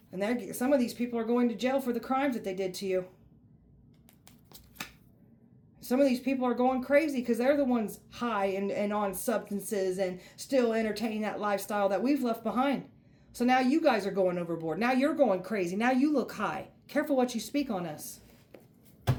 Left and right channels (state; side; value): identical; both; correlation 1.00